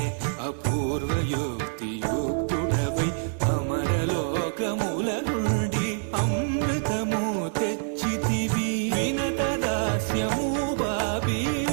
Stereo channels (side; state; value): left; silent; digital silence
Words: అపూర్వయుక్తియుక్తుడవై అమరలోకముల నుండి అమృతము తెచ్చితివి. వినత దాస్యము బాబి